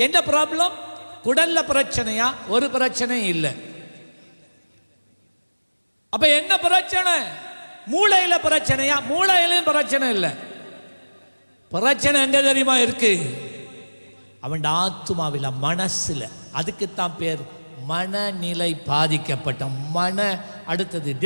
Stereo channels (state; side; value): inverted; both; correlation -1.00